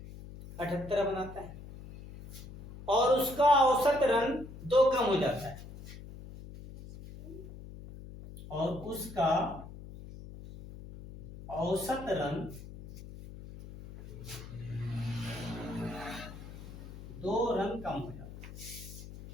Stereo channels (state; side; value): noise; left; hum, 14 dB below the sound